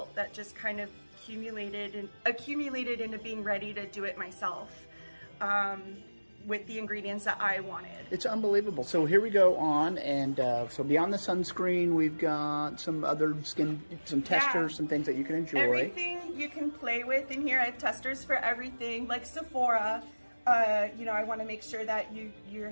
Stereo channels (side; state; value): both; inverted; correlation -1.00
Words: that just kind of accumulated into being ready to do it myself with the ingredients that I wanted. It's unbelievable. So here we go on, and so beyond the sunscreen, we've got some other some testers, some things that you can enjoy. Everything you can play with in here. I have testers for everything, like Sephora. I want to make sure that you're